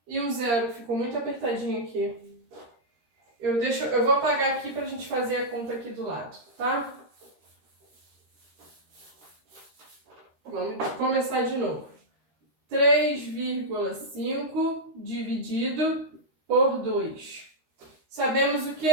e um zero, ficou muito apertadinho aqui. Eu vou apagar aqui para a gente fazer a conta aqui do lado, tá? Vamos começar de novo. 3,5 dividido por 2. Sabemos o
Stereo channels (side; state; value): left; late; 13 ms